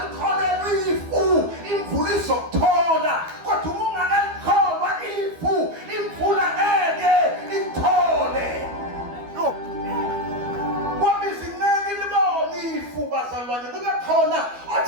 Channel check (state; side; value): late; left; 12 ms